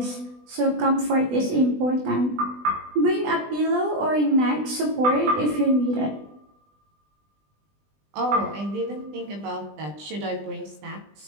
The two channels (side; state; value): left; late; 20 ms